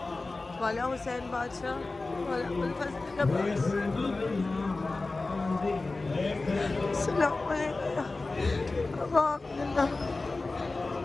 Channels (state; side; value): quieter; right; 3.4 dB